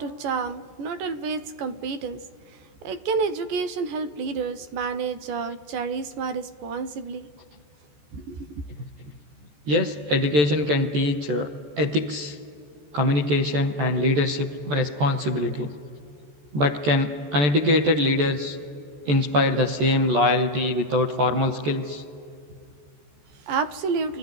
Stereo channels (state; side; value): late; left; 14 ms